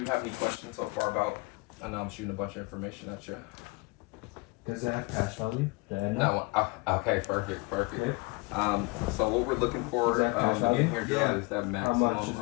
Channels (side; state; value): right; quieter; 27.3 dB